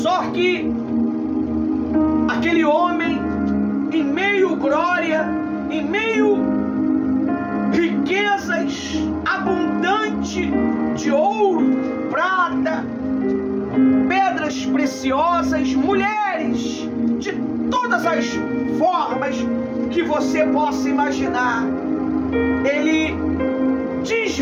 que aquele homem, em meio glória, em meio riquezas abundante de ouro, prata, pedras preciosas, mulheres de todas as formas que você possa imaginar, ele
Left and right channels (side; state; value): both; identical; correlation 1.00